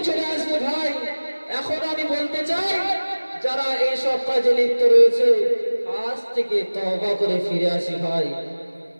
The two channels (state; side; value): inverted; both; correlation -1.00